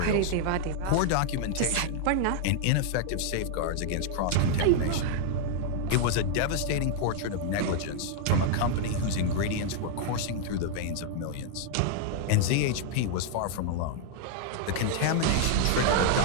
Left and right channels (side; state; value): both; different; correlation 0.00